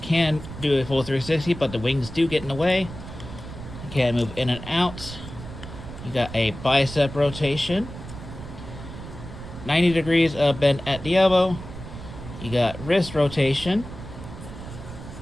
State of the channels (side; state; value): right; noise; rumble, 12 dB below the sound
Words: do a full 360, but the wings do get in the way. Can move in and out. You got a bicep rotation. 90 degrees of bend at the elbow. You got wrist rotation.